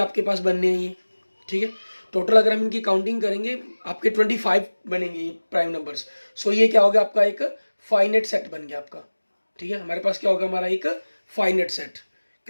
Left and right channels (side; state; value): both; inverted; correlation -1.00